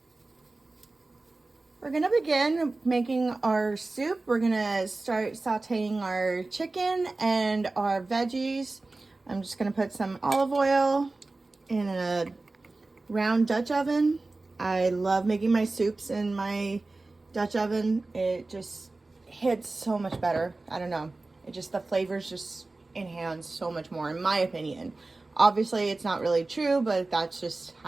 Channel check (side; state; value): left; quieter; 3.3 dB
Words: We're gonna begin making our soup. We're gonna start sauteing our chicken and our veggies. I'm just gonna put some olive oil in a round Dutch oven. I love making my soups in my Dutch oven. It just hits so much better. I don't know. The flavors just enhance so much more, in my opinion. Obviously, it's not really true, but that's just